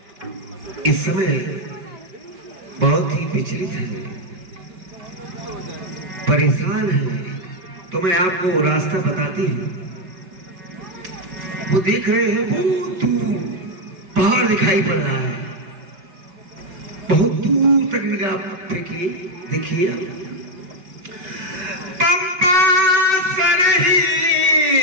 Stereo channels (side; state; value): left; late; 5.3 ms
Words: इस समय बहुत ही विचलित हैं, परेशान हैं, तो मैं आपको रास्ता बताती हूँ। वो देख रहे हैं, बहुत दूर पहाड़ दिखाई पड़ रहा है, बहुत दूर तक निगाह फेंकिए, देखिए। पंपा सरही